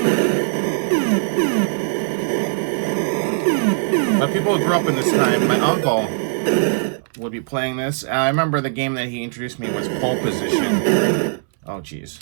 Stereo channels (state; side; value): silent; left; 66 dB below the other